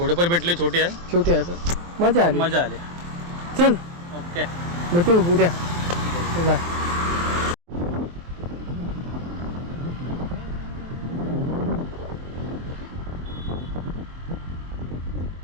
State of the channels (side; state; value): left; late; 23 ms